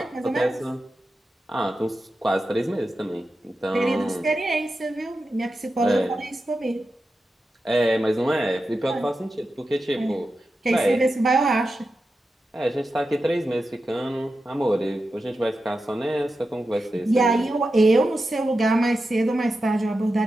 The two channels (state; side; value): normal; both; correlation 0.91